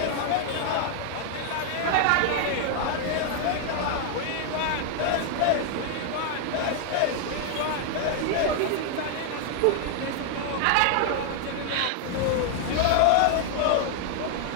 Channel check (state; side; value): different; both; correlation 0.00